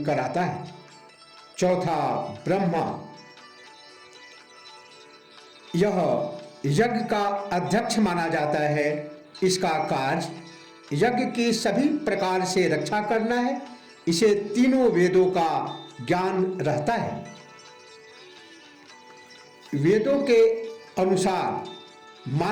कराता है। चौथा ब्रह्मा। यह यज्ञ का अध्यक्ष माना जाता है। इसका कार्य यज्ञ की सभी प्रकार से रक्षा करना है। इसे तीनों वेदों का ज्ञान रहता है। वेदों के अनुसार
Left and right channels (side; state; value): both; identical; correlation 1.00